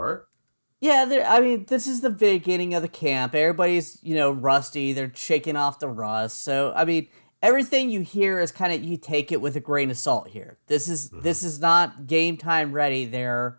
Yeah, this is the beginning of the camp. Everybody's, rusty. They're shaking off the rust. So, everything you hear is kind of, you take it with a grain of salt here. This is not game time ready.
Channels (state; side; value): inverted; both; correlation -1.00